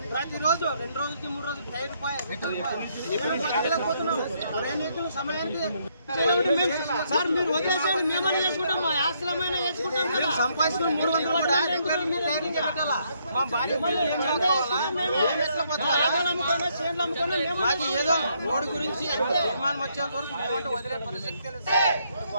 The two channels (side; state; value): both; inverted; correlation -0.72